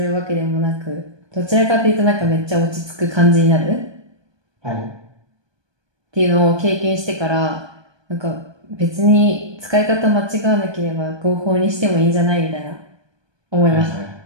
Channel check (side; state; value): left; late; 1.2 ms